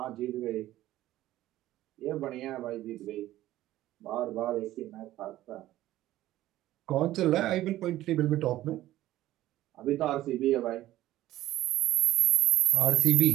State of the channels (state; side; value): quieter; left; 14.9 dB